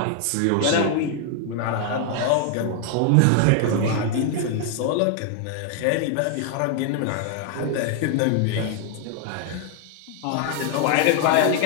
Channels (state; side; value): different; both; correlation 0.00